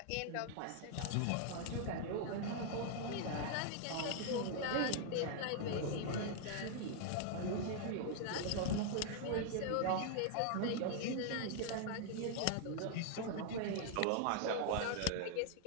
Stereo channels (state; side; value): different; both; correlation 0.00